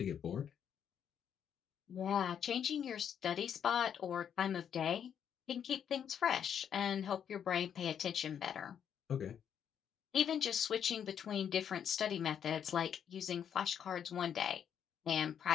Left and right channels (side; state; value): right; quieter; 8.5 dB